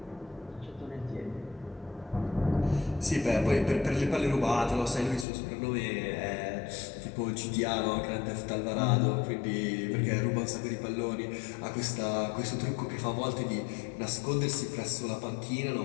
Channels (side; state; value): right; drops out; at 5.2 s